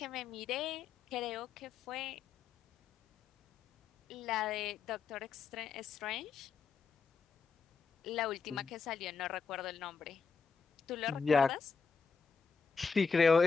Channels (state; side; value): quieter; right; 5.4 dB